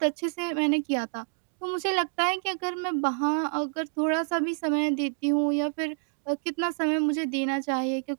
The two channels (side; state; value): left; silent; digital silence